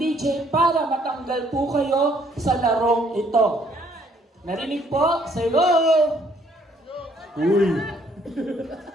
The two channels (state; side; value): normal; both; correlation 0.65